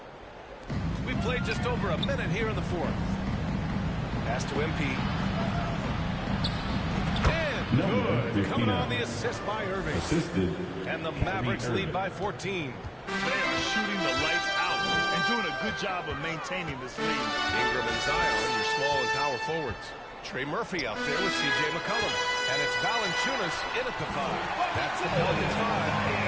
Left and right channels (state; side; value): identical; both; correlation 1.00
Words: We played just over a minute here in the fourth. Pass to MP. And good. Coming on the assist by Irving. Assisted. And the Mavericks lead by 14. They are shooting the lights out and doing a good job of maintaining this lead. Ingram and Zion, your small and power forwards. Trey Murphy out there with C.J. McCollum. And it's Valanciunas in at the 5. That's the Pelicans 5.